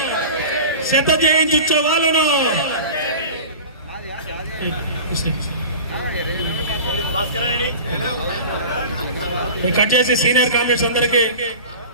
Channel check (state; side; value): inverted; both; correlation -0.35